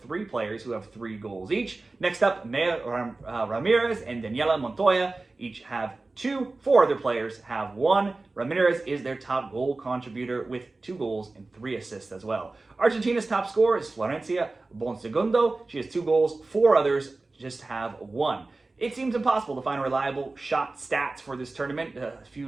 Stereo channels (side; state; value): left; quieter; 3.4 dB